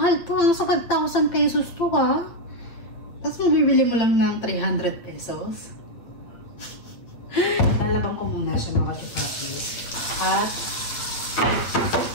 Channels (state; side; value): late; right; 8.7 ms